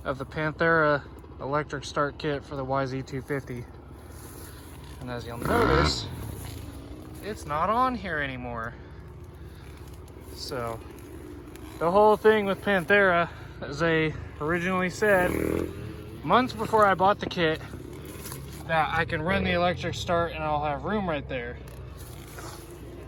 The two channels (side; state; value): both; identical; correlation 1.00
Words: of the Panthera electric start kit for the YZ250. And as you'll notice, it's not on here anymore. So the whole thing with Panthera, as they originally said, months before I bought the kit, that I can run the electric start and I'll have room right there.